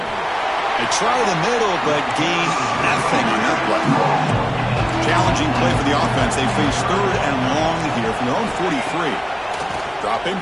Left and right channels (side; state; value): both; identical; correlation 1.00